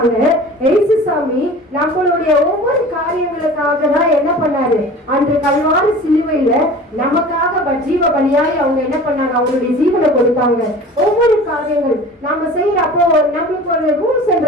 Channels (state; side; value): normal; both; correlation 0.40